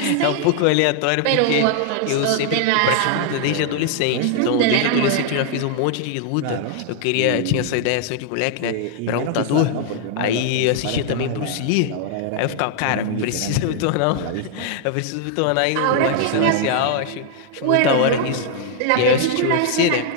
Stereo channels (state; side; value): different; both; correlation 0.00